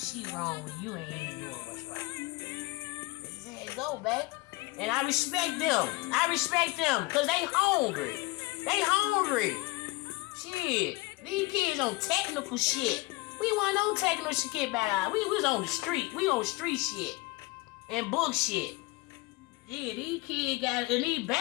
wrong when you ain't even doing what's right? This is how it go, baby. And I respect them. Because they hungry. Shit. These kids on technical shit. We wasn't on technical shit back out. We was on the street. We on street shit. And book shit. Yeah, these kids got, and these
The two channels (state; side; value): quieter; right; 21.9 dB